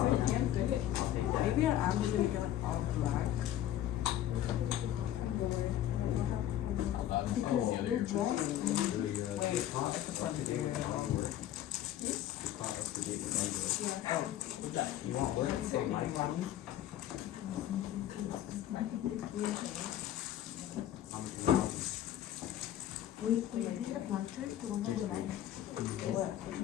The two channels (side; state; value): right; quieter; 12.2 dB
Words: Maybe I'm just gonna get like all black. Because the dress. Wait, I could probably do it. Oh, what's that? You want work? We did the planter, the one that we like.